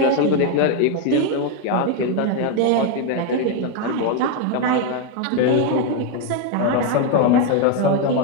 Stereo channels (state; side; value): different; both; correlation 0.01